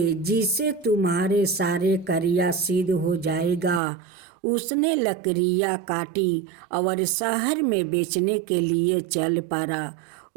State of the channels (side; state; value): left; drops out; at 3.8 s